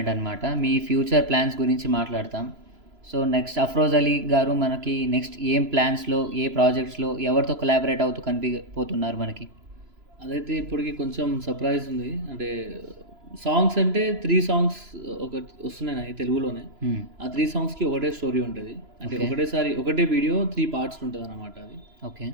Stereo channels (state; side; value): late; left; 3.0 ms